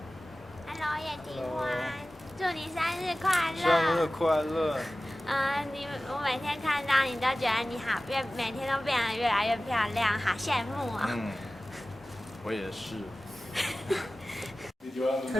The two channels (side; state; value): both; normal; correlation 0.96